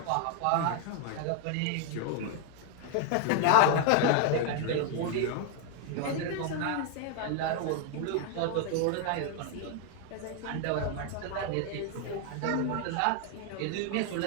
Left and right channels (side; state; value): both; different; correlation 0.00